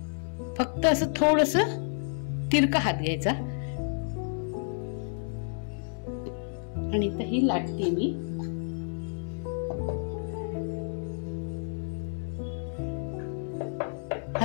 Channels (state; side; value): silent; right; 58 dB below the other